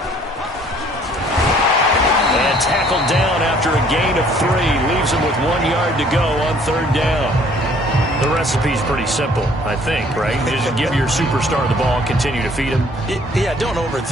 And tackled down after a gain of 3. Leaves him with 1 yard to go on third down. The recipe's pretty simple, I think, right? Just give your superstar the ball, continue to feed him. Yeah, don't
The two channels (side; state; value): both; normal; correlation 0.58